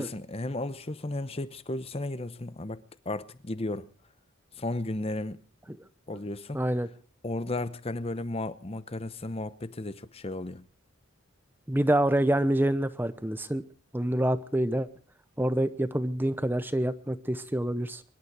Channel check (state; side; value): normal; both; correlation 0.85